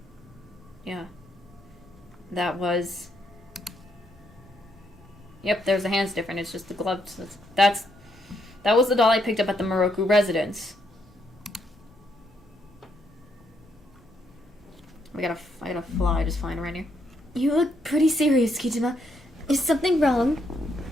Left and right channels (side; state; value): both; normal; correlation 0.76